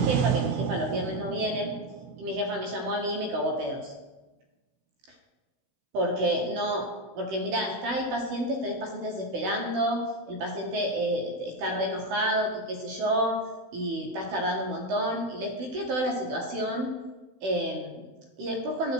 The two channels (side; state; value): left; late; 16 ms